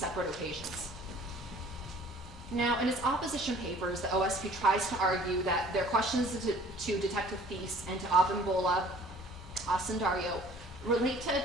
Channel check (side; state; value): both; normal; correlation 0.52